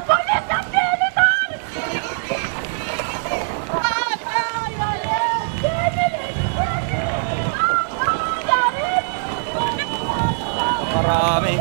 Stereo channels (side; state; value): left; silent; digital silence